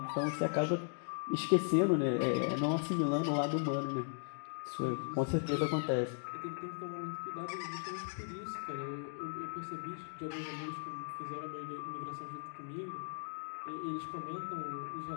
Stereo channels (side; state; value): right; silent; digital silence